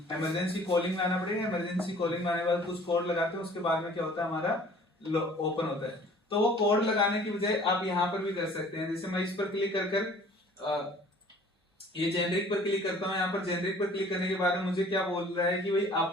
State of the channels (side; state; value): both; normal; correlation 0.51